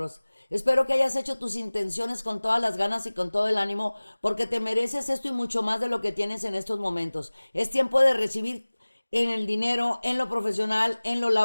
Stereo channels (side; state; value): both; inverted; correlation -1.00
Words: Espero que hayas hecho tus intenciones con todas las ganas y con todo el ánimo, porque te mereces esto y mucho más de lo que tienes en estos momentos. Es tiempo de recibir en el dinero, en lo profesional, en lo